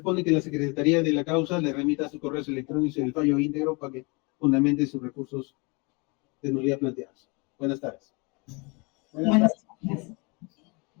que la Secretaría de la Causa le remita a sus correos electrónicos el fallo íntegro para que fundamente sus recursos de nulidad planteados. Buenas tardes. Buenas tardes.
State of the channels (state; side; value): quieter; right; 29.6 dB